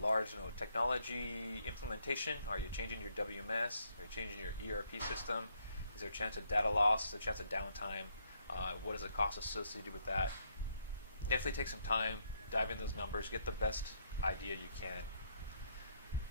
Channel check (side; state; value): both; inverted; correlation -0.72